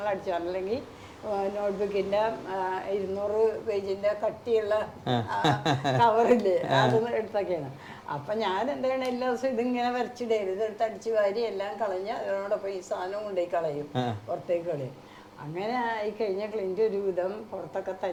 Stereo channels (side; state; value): both; identical; correlation 1.00